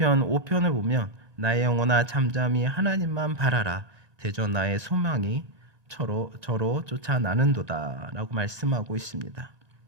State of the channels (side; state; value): left; late; 1.9 ms